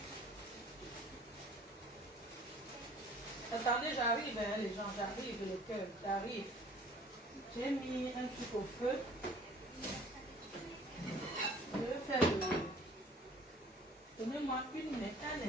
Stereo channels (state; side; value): normal; both; correlation 0.51